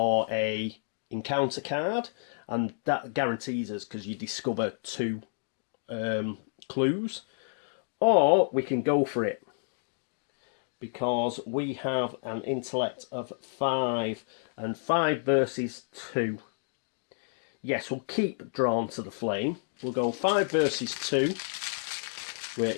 a encounter card, and that guarantees us because you discover 2 clues. Or we can go for it because we have an intellect of 5, and 5 versus 2. Yes, we'll keep Drawn to the Flame. We'll go 5 versus 2. We're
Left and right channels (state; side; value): silent; right; digital silence